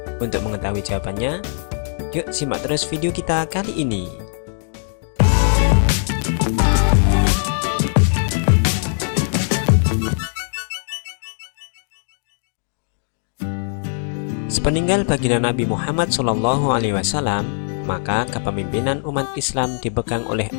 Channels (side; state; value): right; silent; digital silence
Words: Untuk mengetahui jawabannya, yuk simak terus video kita kali ini. Sepeninggal baginda Nabi Muhammad SAW, maka kepemimpinan umat Islam dipegang oleh